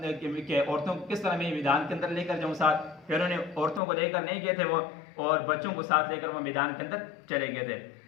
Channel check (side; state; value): right; drops out; at 3.8 s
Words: کہ عورتوں کو کس طرح میں میدان کے اندر لے کر جاؤں ساتھ، پھر انہوں نے عورتوں کو لے کر نہیں گئے تھے وہ، اور بچوں کو ساتھ لے کر وہ میدان کے اندر چلے گئے تھے۔